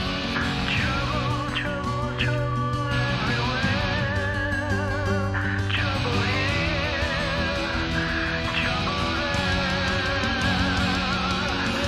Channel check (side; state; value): both; identical; correlation 1.00